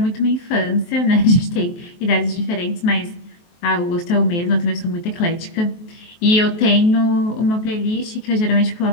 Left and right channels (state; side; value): late; right; 23 ms